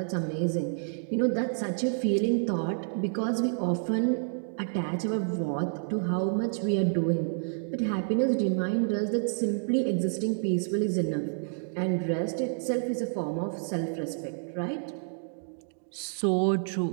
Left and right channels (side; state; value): left; silent; digital silence